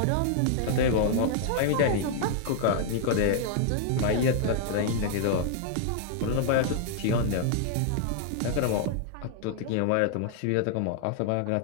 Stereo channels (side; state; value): both; different; correlation -0.01